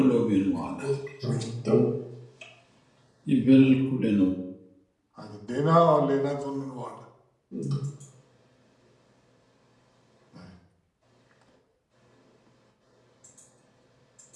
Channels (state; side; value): identical; both; correlation 1.00